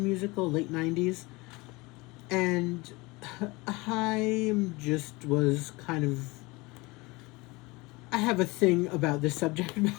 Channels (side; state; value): right; quieter; 23.9 dB